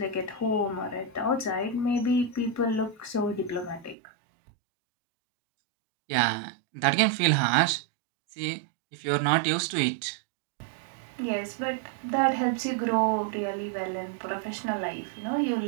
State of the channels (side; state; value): left; drops out; at 4.0 s